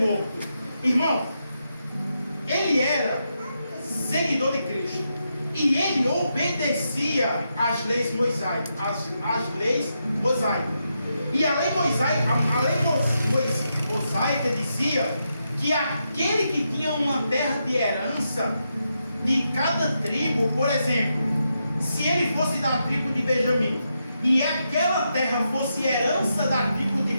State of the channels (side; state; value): both; inverted; correlation -0.84